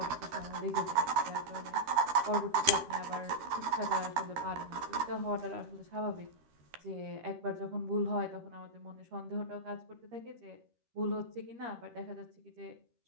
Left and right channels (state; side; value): late; left; 13 ms